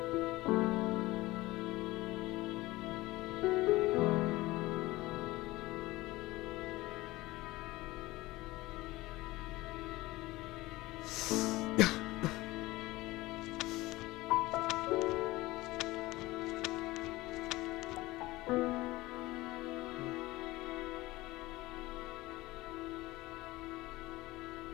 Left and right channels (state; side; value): quieter; right; 19.3 dB